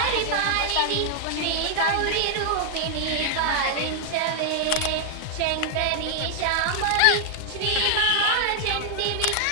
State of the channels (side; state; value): both; different; correlation 0.00